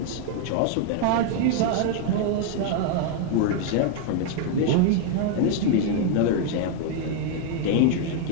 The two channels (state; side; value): different; both; correlation 0.00